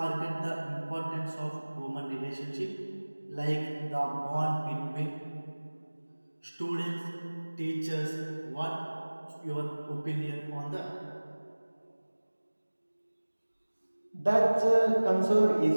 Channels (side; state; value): both; inverted; correlation -1.00